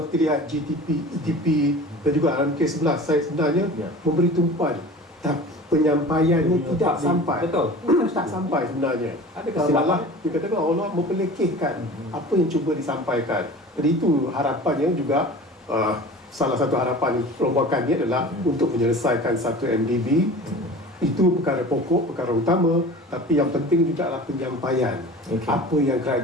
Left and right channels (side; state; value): both; normal; correlation 0.39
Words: kita lihat GDP, EDP dan juga dalam kes 11, saya sebenarnya memberi tumpuan, tapi penyampaiannya tidak sampai. Betul. Tak sampai sebenarnya. Ada kesilapan. Dikatakan Allah mempelekehkan apa yang cuba disampaikan. Jadi itu harapannya juga, salah satu harapan perombakannya adalah untuk menyelesaikan satu MDB. Itu perkara pokok, perkara utama, tapi yang penting juga adalah penyampaian. Apa yang